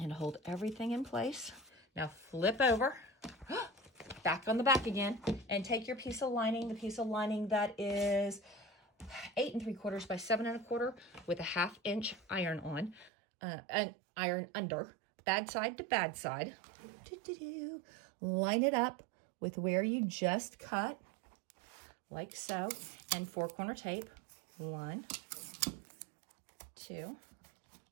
hold everything in place. Now flip over, back on the back again, and take your piece of lining, the piece of lining that is 8 3/4 by 7 1/4 with a 1/2 inch iron on, an iron under, bad side to bad side. Line it up with where you just cut, like so, and 4-corner tape. 1, 2,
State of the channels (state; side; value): drops out; left; at 13.1 s